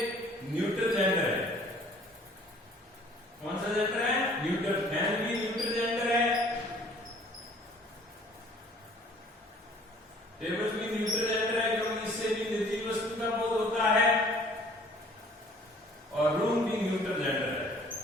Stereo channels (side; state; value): both; normal; correlation 0.54